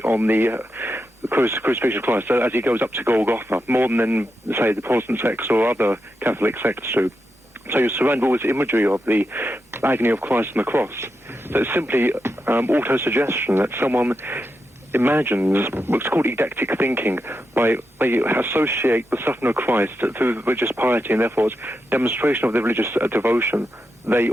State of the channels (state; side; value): normal; both; correlation 0.87